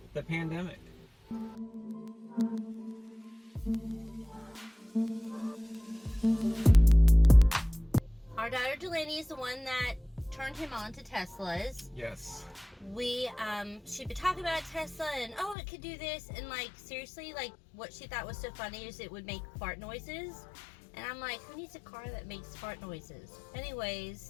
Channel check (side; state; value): right; drops out; at 15.6 s